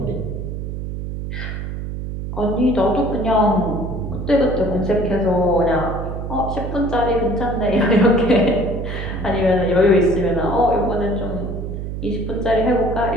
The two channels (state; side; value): noise; right; hum, 6 dB below the sound